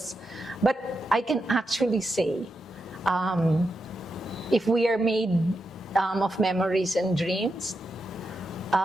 But I can actually say, if we are made of memories and dreams,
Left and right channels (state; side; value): normal; both; correlation 0.86